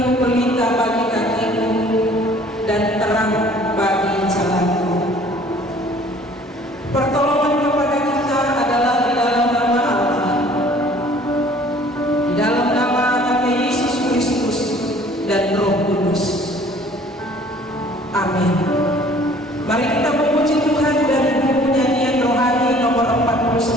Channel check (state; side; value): normal; both; correlation 0.53